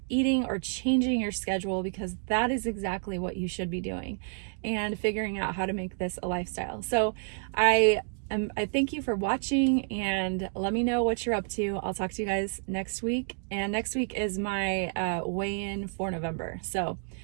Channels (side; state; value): left; silent; 57 dB below the other